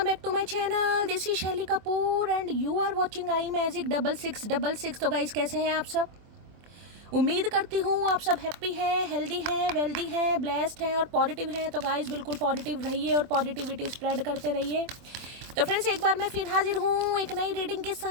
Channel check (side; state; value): left; late; 24 ms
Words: back to my channel. This is शैली Kapoor and you are watching I magic 6666। तो guys कैसे हैं आप सब? उम्मीद करती हूँ आप सब हैप्पी हैं, हेल्दी हैं, वेल्दी हैं, ब्लेस्ड हैं और पॉजिटिव हैं। तो गाइस बिल्कुल पॉजिटिव रहिए और पॉजिटिविटी स्प्रेड करते रहिए। तो फ्रेंड्स एक बार मैं फिर हाजिर हूँ एक नई रीडिंग के